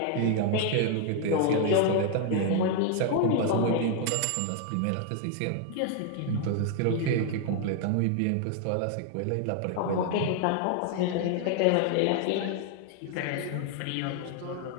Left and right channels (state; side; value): different; both; correlation 0.00